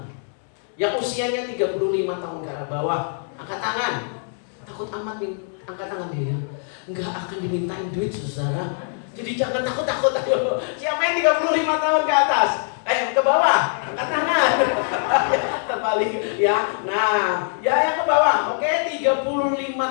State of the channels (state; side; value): silent; right; digital silence